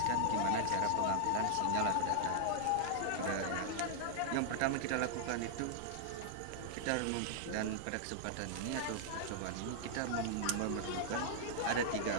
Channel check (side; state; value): both; different; correlation -0.01